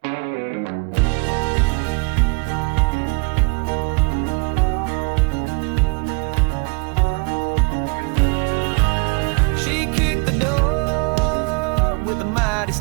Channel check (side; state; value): left; quieter; 34.2 dB